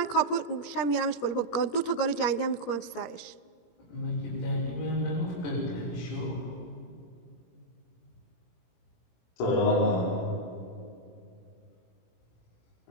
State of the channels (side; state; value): right; late; 17 ms